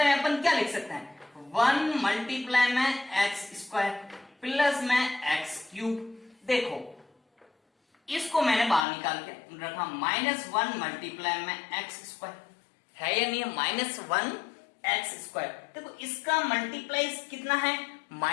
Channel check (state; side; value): drops out; right; at 8.8 s